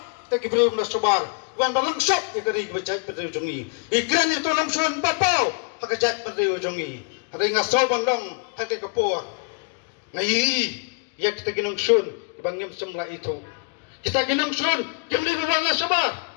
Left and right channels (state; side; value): quieter; right; 35.9 dB